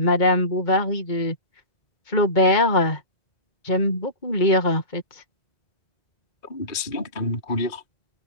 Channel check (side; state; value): right; late; 2.5 ms